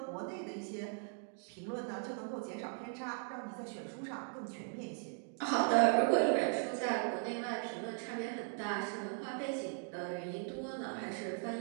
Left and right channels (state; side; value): silent; left; 52 dB below the other